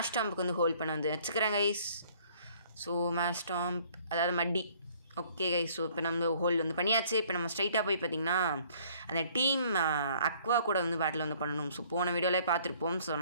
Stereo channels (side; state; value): both; inverted; correlation -0.59